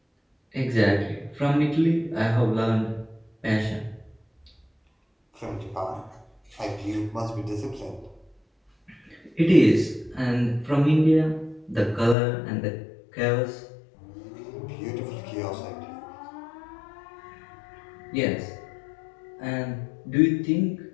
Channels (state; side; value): drops out; right; at 12.2 s